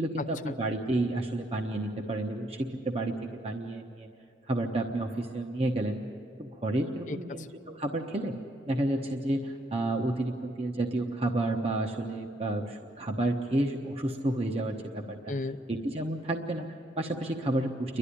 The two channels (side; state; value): both; normal; correlation 0.71